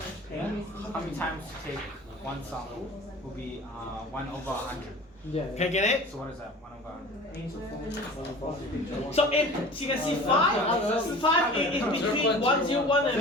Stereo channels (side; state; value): both; normal; correlation 0.41